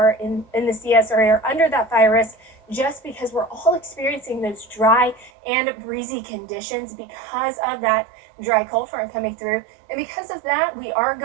in the CSRA are under that fire risk, just because we're all experiencing those dry and breezy conditions because of that dry cold front coming through. And because of that, we are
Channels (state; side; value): drops out; left; at 5.3 s